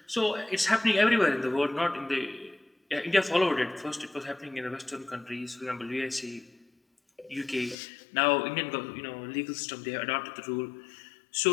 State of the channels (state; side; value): drops out; right; at 7.8 s